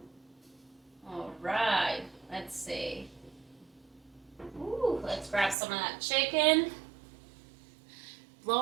All right, let's see. Ooh, let's grab some of that chicken.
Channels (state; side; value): drops out; left; at 5.6 s